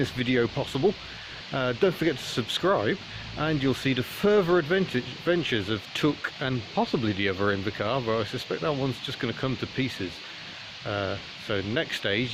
video possible. Don't forget to subscribe, and you'll see the further adventures of Took and possibly the other Invacar, but I suspect that one's just going to come to pieces. So the next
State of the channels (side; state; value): both; identical; correlation 1.00